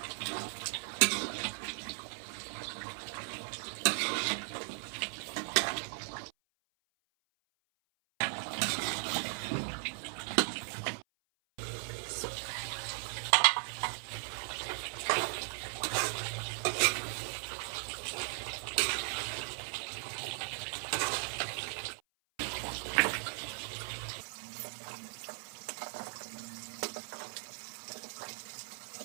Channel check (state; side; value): silent; left; 53 dB below the other